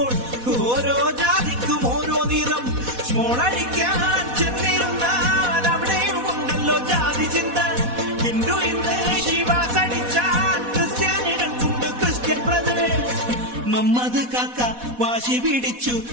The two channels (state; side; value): late; left; 4.1 ms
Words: ഓരോ ജാതിക്കും ഓരോ നിറം. സ്മോളടിക്കാൻ ചെന്നിരുന്നാൽ അവിടെയും ഉണ്ടല്ലോ ജാതി ചിന്ത. ഹിന്ദു ഇന്ന് ശിവാസ് അടിച്ചാൽ ക്രിസ്ത്യാനികൾക്കുണ്ട് ക്രിസ്ത്യൻ ബ്രദേഴ്സ്. മമ്മദ് കാക്ക വാശി പിടിച്ചു,